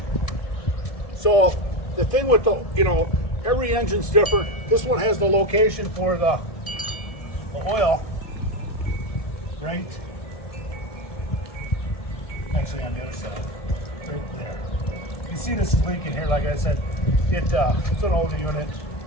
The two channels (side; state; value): right; late; 1.7 ms